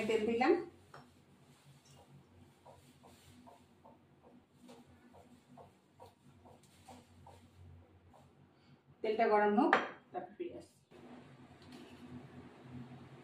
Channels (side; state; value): both; identical; correlation 1.00